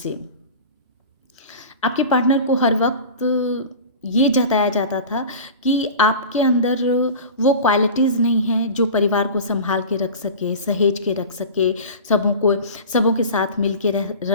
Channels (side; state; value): both; inverted; correlation -0.34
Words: आपके पार्टनर को हर वक्त ये जताया जाता था कि आपके अंदर वो क्वालिटीज़ नहीं हैं जो परिवार को संभाल के रख सके, सहेज के रख सके, सबों के साथ मिल के